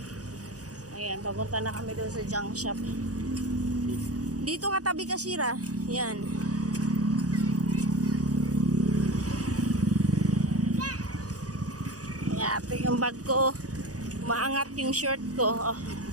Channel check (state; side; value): late; left; 0.67 ms